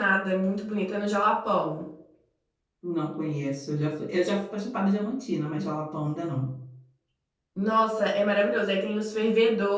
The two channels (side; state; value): both; identical; correlation 1.00